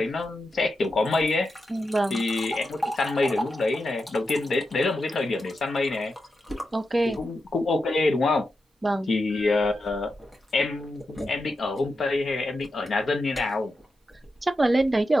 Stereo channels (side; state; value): both; normal; correlation 0.88